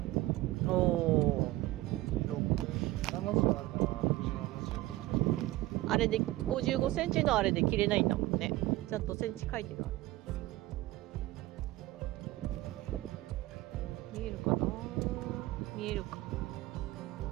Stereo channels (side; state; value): left; quieter; 17.7 dB